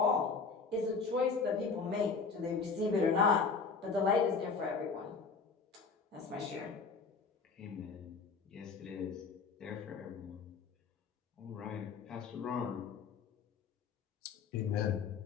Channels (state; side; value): quieter; right; 4.9 dB